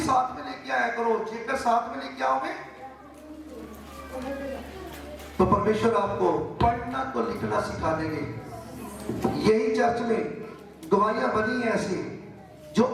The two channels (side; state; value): both; identical; correlation 1.00